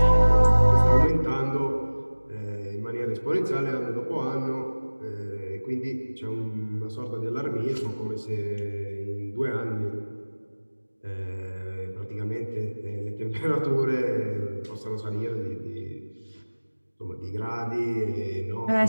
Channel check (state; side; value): inverted; both; correlation -1.00